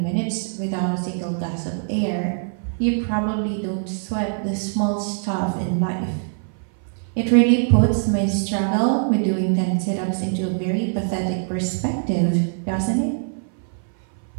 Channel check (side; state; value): left; silent; 57 dB below the other